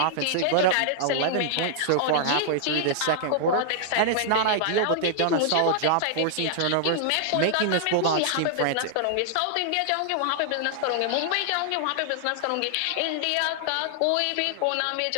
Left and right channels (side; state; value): both; different; correlation -0.01